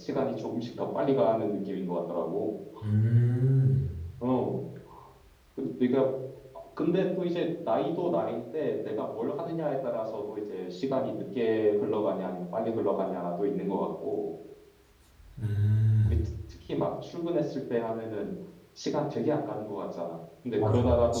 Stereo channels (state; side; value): identical; both; correlation 1.00